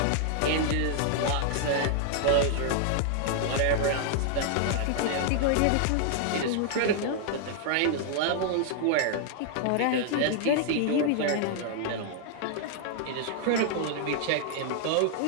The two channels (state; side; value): different; both; correlation -0.01